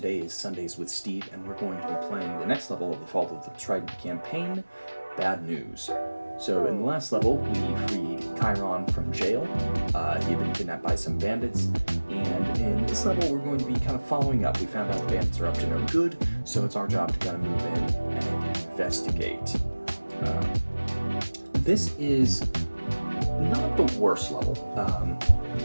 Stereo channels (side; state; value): both; inverted; correlation -1.00